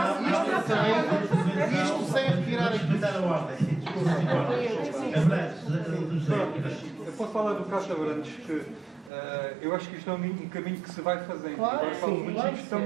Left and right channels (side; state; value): left; drops out; at 9.1 s